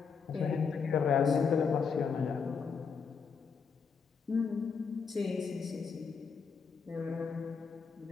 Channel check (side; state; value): right; quieter; 5.8 dB